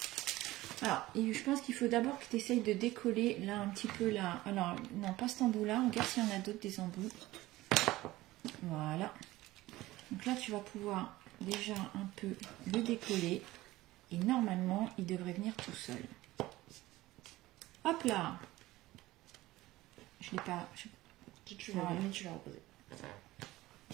Alors, et je pense qu'il faut d'abord que tu essayes de décoller là un petit peu là. Alors, non, pas cet embout-là. Regarde s'il y en a d'autres des embouts. Voilà. Donc là, tu vas pouvoir déjà un peu le décoller. Et normalement, il devrait venir tout seul. Hop là. Je l'ai pas... Tu l'as Voilà. mis, tu l'as reposé.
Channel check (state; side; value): quieter; left; 17.7 dB